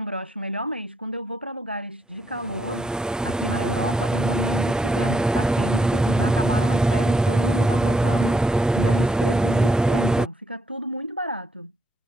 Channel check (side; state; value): both; normal; correlation 0.76